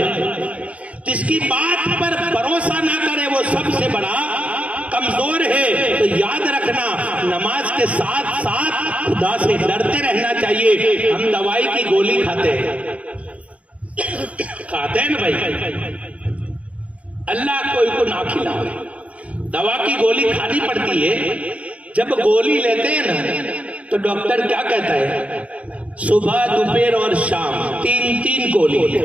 जिसकी बात पर भरोसा ना करे वो सबसे बड़ा कमजोर है। तो याद रखना, नमाज के साथ साथ खुदा से डरते रहना चाहिए। हम दवाई की गोली खाते हैं, खाते हैं ना भाई, अल्लाह कोई को ना खिलाए, दवा की गोली खानी पड़ती है। जब गोली लेते हैं ना तो डॉक्टर क्या कहता है? सुबह दोपहर और शाम 3-3 गोली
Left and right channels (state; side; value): late; left; 0.065 ms